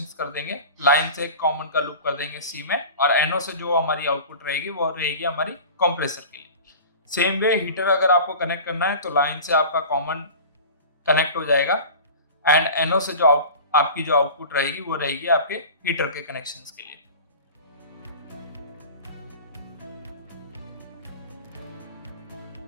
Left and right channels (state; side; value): inverted; both; correlation -0.37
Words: कर देंगे। लाइन से एक कॉमन का लूप कर देंगे C में, और NO से जो हमारी आउटपुट रहेगी वो रहेगी हमारी कंप्रेसर के लिए। सेम वे हीटर अगर आपको कनेक्ट करना है तो लाइन से आपका कॉमन कनेक्ट हो जाएगा, एंड NO से जो आपकी जो आउटपुट रहेगी वो रहेगी आपके हीटर के कनेक्शंस के लिए।